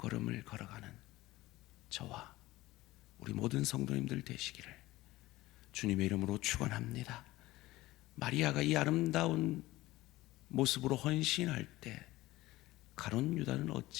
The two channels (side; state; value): right; quieter; 18.1 dB